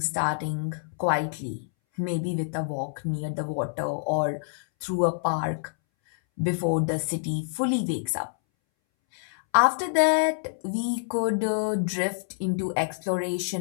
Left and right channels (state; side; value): silent; right; 60 dB below the other